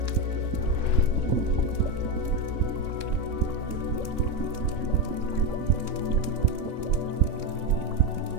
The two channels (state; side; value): late; left; 3.6 ms